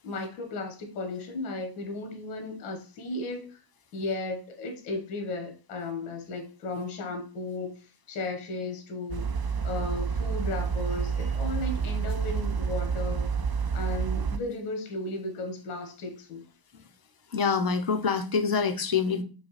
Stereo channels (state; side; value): late; left; 1.0 ms